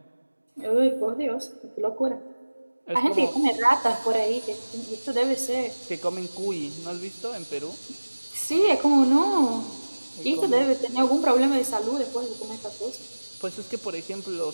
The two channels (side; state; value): both; inverted; correlation -1.00